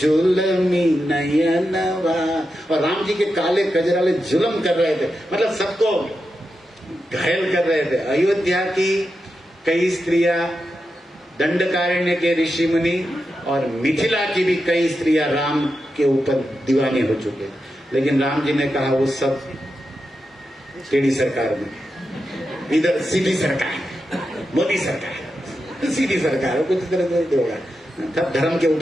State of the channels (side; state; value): both; normal; correlation 0.88